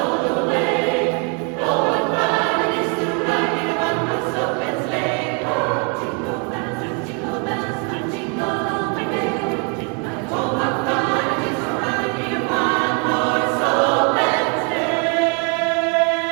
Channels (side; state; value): left; quieter; 35.7 dB